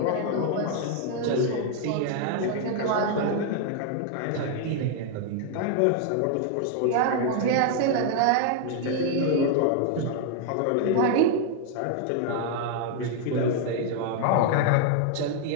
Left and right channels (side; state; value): both; different; correlation 0.00